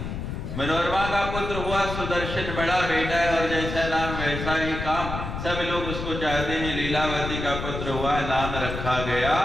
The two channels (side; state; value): left; noise; rumble, 6 dB below the sound